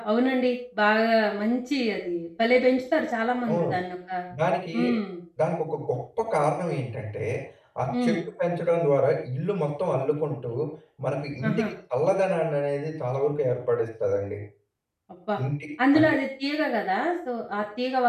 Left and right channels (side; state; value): both; identical; correlation 1.00